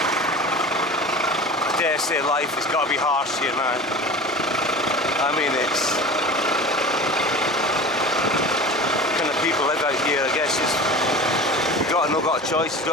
I dare say life has got to be harsh here, man. I mean, it's kind of people live out here. I guess you've got a choice. You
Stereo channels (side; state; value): both; normal; correlation 0.35